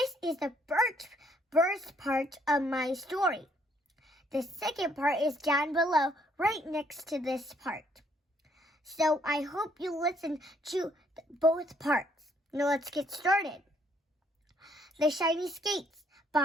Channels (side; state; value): both; normal; correlation 0.67